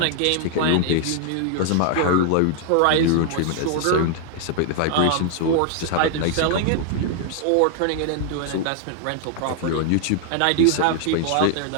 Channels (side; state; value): both; different; correlation 0.00